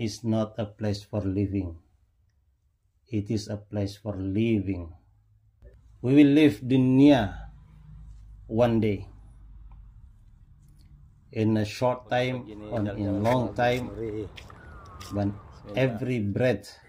not a place for living. It is a place for living. We will leave dunya one day. In a short time or in a long time, but every breath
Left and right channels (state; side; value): identical; both; correlation 1.00